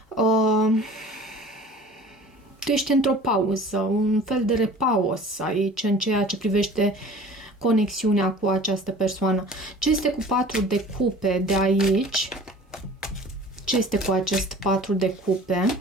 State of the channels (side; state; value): both; normal; correlation 0.44